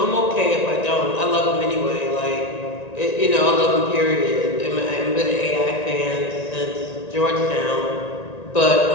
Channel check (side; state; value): right; late; 1.9 ms